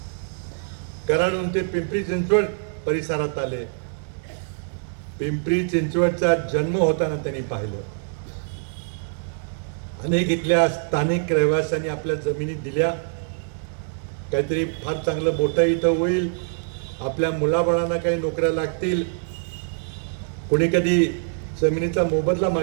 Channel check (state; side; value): silent; left; digital silence